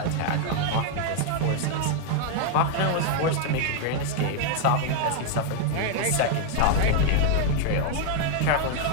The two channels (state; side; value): different; both; correlation 0.00